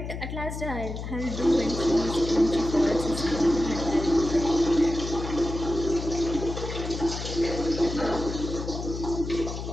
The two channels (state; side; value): noise; left; hum, 7 dB below the sound